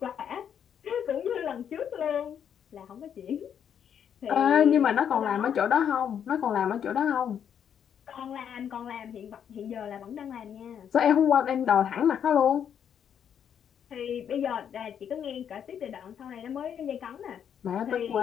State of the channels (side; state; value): right; quieter; 8.5 dB